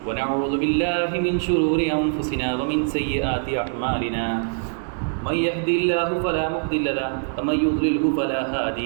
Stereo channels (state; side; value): silent; left; digital silence